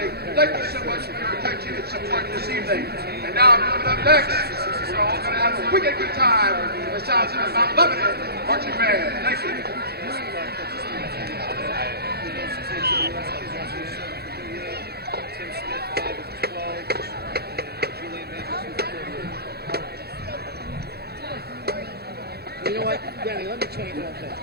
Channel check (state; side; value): late; left; 0.46 ms